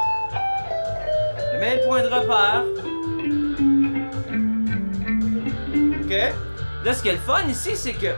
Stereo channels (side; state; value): both; inverted; correlation -1.00